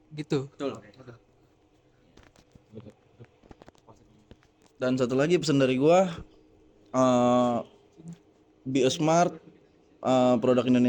gitu. Dan satu lagi pesan dari gua, be a smart, produk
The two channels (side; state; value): both; identical; correlation 1.00